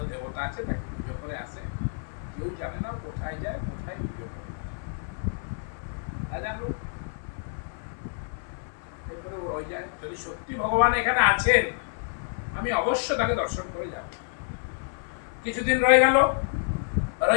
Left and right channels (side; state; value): right; silent; 59 dB below the other